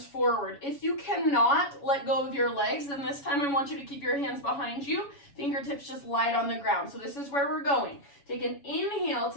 forward. If you cannot let go of your legs, then this time I want you to keep your hands behind you. Fingertips just light on the ground. So this is where we're going. Take an inhale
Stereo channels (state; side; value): late; right; 7.1 ms